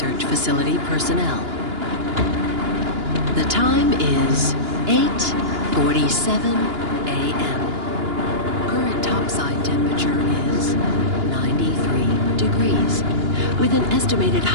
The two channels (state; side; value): late; left; 2.9 ms